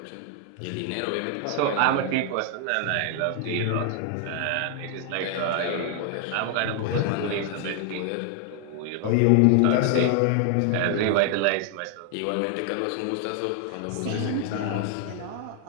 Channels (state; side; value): different; both; correlation 0.00